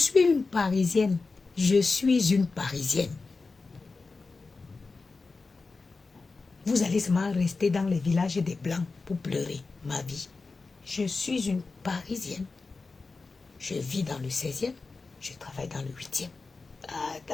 une Parisienne. Je suis une Parisienne. Vous allez seulement rester dans les villages des Blancs pour pleurer ma vie. Je suis une Parisienne. Je vis dans le 16e. Je travaille dans le 8e. Ah,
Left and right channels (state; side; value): quieter; right; 4.0 dB